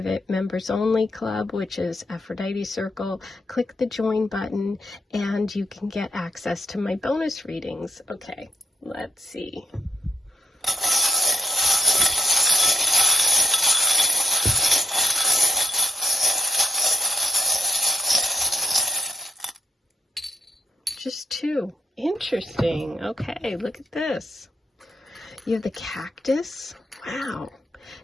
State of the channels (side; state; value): both; normal; correlation 0.80